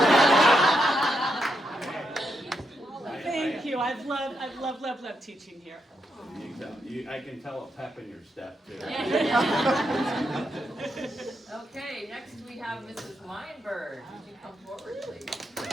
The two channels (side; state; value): both; normal; correlation 0.82